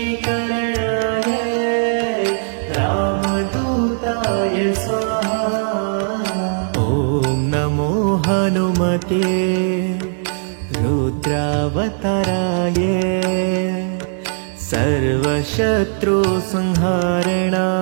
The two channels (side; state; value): left; silent; 63 dB below the other